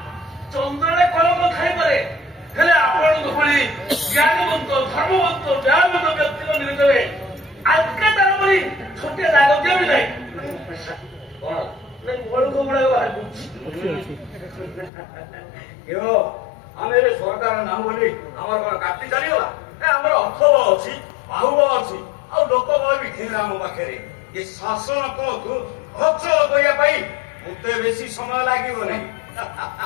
ଚନ୍ଦ୍ରରେ କଲମ ଖାଇପାରେ ହେଲେ ଆପଣଙ୍କ ଭଳି ଜ୍ଞାନବନ୍ତ ଧର୍ମବନ୍ତ ନ୍ୟାୟବନ୍ତ ବ୍ୟକ୍ତିଙ୍କ ନିକଟରେ ଆଜକା ତାର ଭଳି ଛୋଟିଆ ଦାଗ ଦିଅ ବି ନାହିଁ କଣ ବଳୁକୁ ଗୁଡ଼ାକ ବାହାର କରୁଛି ଆମେ ଏବେ ସରକାର ନାମ ବୋଲି ଆମର କଣ କାଟି ଚାଲିଗଲା ଆମର ଅର୍ଥବ ଅଛି ବାହୁବ ଅଛି ଆଉ ଲୋକବଳ ବି ଥିଲା ଆମ ପାଖରେ ଏ ଶାସନ କଳକୁ ଅଚଳ କରିବା ପାଇଁ ମତେ ବେଶୀ ସମୟ ଲାଗିବ ନାହିଁ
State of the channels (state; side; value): drops out; right; at 14.9 s